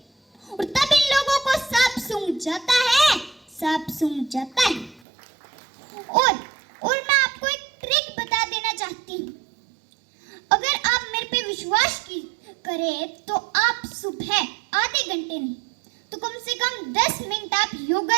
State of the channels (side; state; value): left; drops out; at 5.0 s